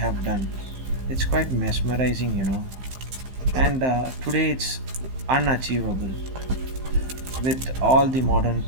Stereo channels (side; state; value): left; late; 15 ms